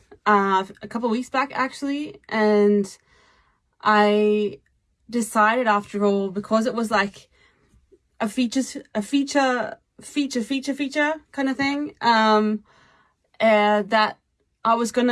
a couple of weeks back actually, and I decided after all, because it was like a feature kind of thing, that I was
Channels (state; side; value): identical; both; correlation 1.00